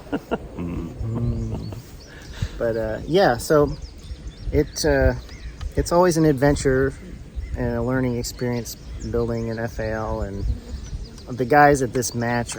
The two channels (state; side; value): identical; both; correlation 1.00